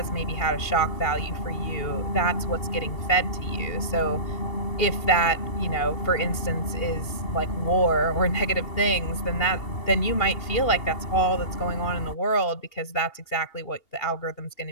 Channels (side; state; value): right; late; 2.8 ms